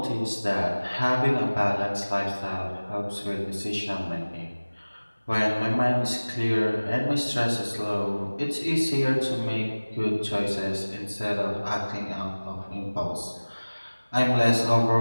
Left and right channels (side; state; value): both; inverted; correlation -1.00